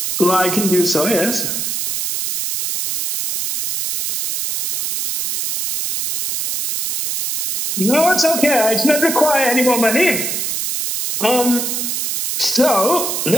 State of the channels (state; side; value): noise; right; hiss, 2 dB below the sound